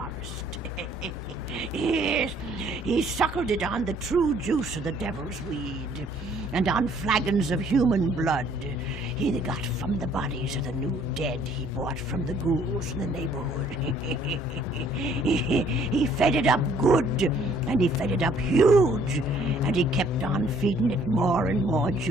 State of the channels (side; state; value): both; normal; correlation 0.61